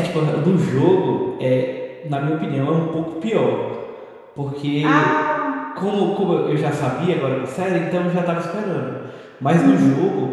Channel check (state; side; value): identical; both; correlation 1.00